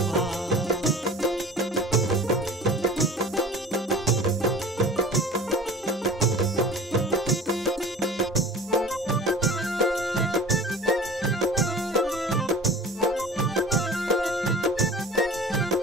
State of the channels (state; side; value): normal; both; correlation 0.40